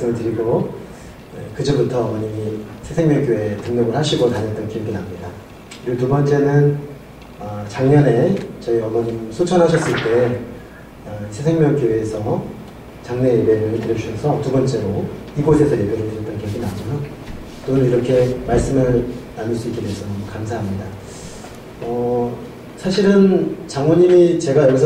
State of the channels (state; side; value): identical; both; correlation 1.00